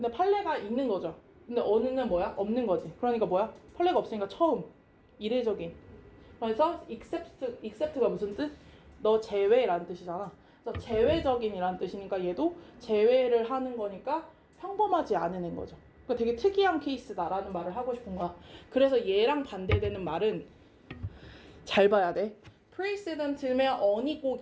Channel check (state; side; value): identical; both; correlation 1.00